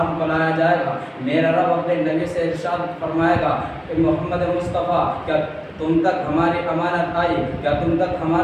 کو لایا جائے گا. میرا رب اپنے نبی سے ارشاد فرمائے گا کہ محمد مصطفیٰ کیا تم تک ہماری امانت آئی؟ کیا تم تک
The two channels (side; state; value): both; identical; correlation 1.00